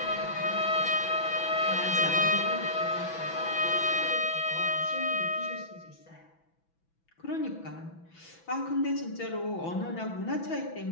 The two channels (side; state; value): right; late; 6.0 ms